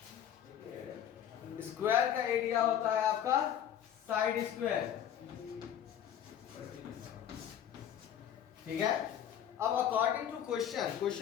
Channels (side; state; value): right; quieter; 9.9 dB